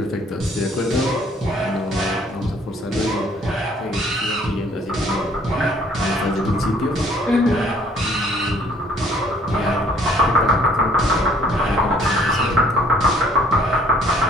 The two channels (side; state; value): both; normal; correlation 0.59